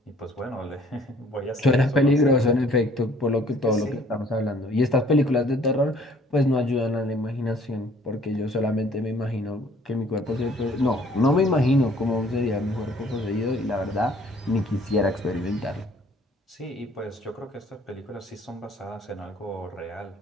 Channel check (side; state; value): both; normal; correlation 0.58